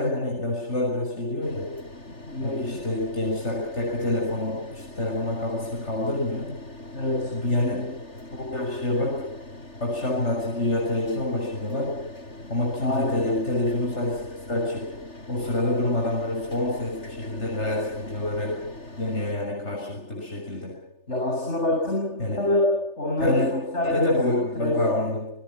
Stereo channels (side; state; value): right; late; 3.3 ms